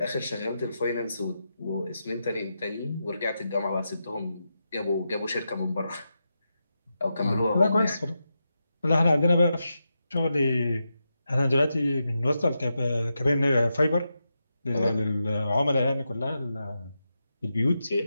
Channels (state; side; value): inverted; both; correlation -0.87